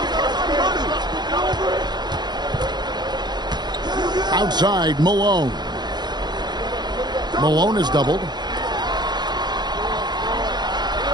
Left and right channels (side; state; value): left; late; 0.21 ms